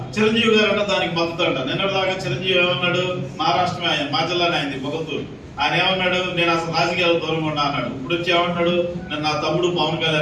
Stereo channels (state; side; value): identical; both; correlation 1.00